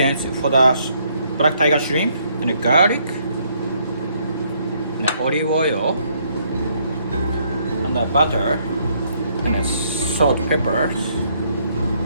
for the black tiger shrimp and the garlic and the olive oil and the butter and the salt, peppers.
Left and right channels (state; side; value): inverted; both; correlation -0.69